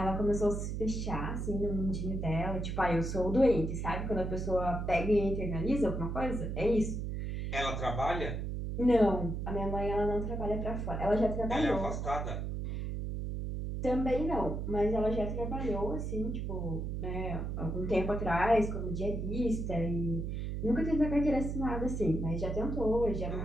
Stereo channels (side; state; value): right; noise; hum, 3 dB below the sound